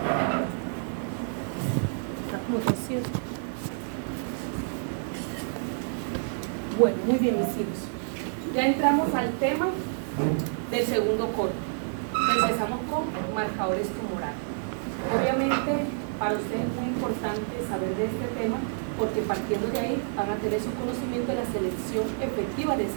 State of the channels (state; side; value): silent; left; 58 dB below the other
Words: Bueno, muy bien, mis hijos. Ya entramos al tema del segundo corte. Empezamos con marcadores tumorales. Obviamente, para ustedes es muy importante saber de este tema porque partiendo de ahí van a tener su conocimiento de la selección efectiva de